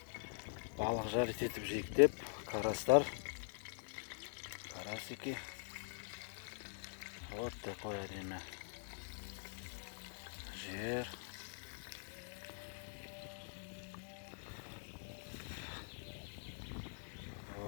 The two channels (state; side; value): silent; right; digital silence